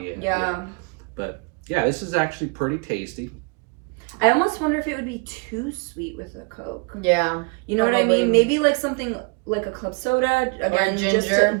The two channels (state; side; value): quieter; left; 32.9 dB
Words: Yeah. But yeah, this is actually pretty tasty. I almost wonder if it would be too sweet with a Coke. Yeah. You know what I Probably. mean? Maybe like something like a club soda, again, Or a ginger.